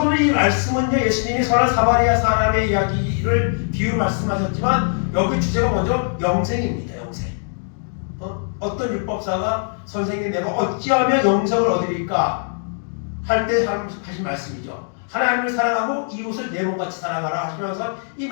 오늘 이 말씀은요, 예수님이 선한 사마리아 사람의 이야기를 비유 말씀하셨지만 여기 주제가 먼저 영생입니다. 영생. 어떤 율법사가 선생님 내가 어찌하면 영생을 얻으리까 할 때 하신 말씀이죠. 하나님을 사랑하고 이웃을 내 몸같이 사랑하라 하시면서 이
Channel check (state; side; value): silent; right; digital silence